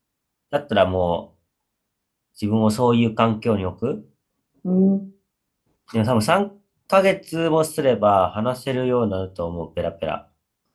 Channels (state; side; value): identical; both; correlation 1.00